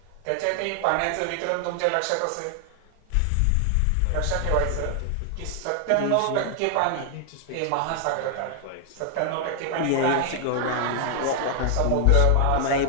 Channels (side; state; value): both; different; correlation 0.00